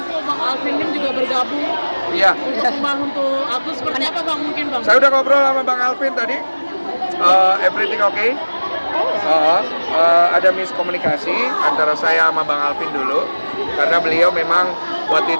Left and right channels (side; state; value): both; inverted; correlation -1.00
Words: Bang Alvin juga bergabung Iya, untuk membantu Agus. Seperti apa Bang mungkin Bang? saya udah ngobrol sama Bang Alvin tadi. Everything okay? Ada miskomunikasi antara saya sama Bang Alvin dulu karena beliau memang waktu